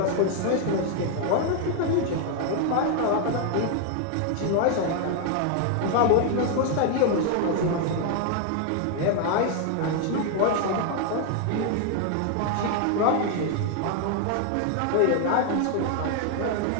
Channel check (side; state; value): both; different; correlation 0.00